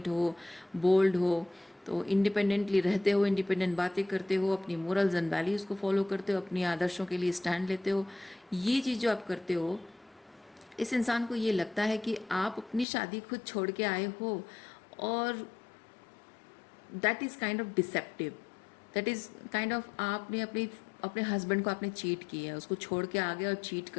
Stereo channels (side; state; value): right; drops out; at 12.9 s